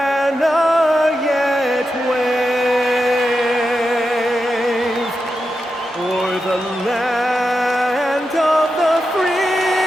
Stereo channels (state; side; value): normal; both; correlation 0.89